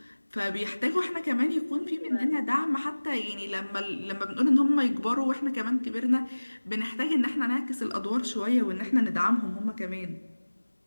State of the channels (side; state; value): both; inverted; correlation -1.00